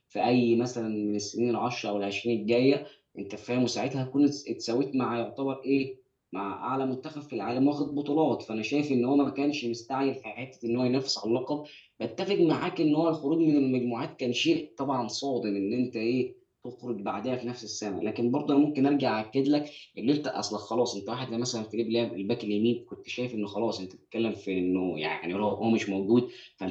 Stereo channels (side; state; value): both; identical; correlation 1.00